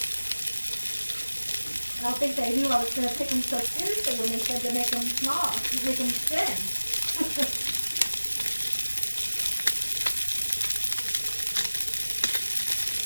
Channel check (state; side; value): inverted; both; correlation -1.00